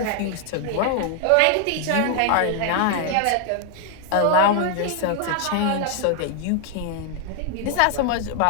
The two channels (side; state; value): both; different; correlation 0.00